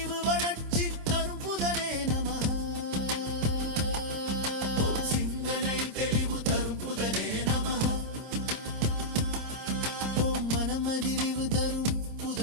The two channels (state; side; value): late; left; 26 ms